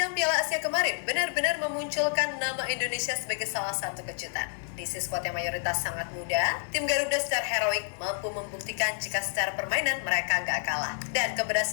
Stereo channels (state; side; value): silent; right; 59 dB below the other